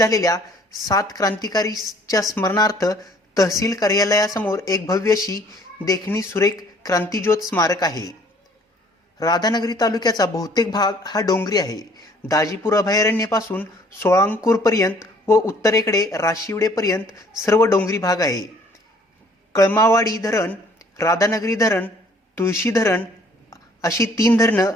7 क्रांतिकारीच्या स्मरणार्थ तहसील कार्यालयासमोर एक भव्य अशी देखणी सुरेख क्रांतिज्योत स्मारक आहे. राधानगरी तालुक्याचा बहुतेक भाग हा डोंगरी आहे. दाजीपूर अभयारण्यापासून सोळांकूरपर्यंत व उत्तरेकडे राशिवडेपर्यंत सर्व डोंगरी भाग आहे. कळमावाडी धरण, राधानगरी धरण, तुळशी धरण अशी 3 धरणं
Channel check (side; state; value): both; normal; correlation 0.58